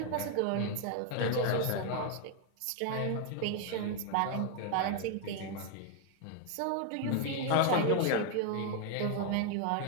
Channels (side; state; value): both; different; correlation 0.00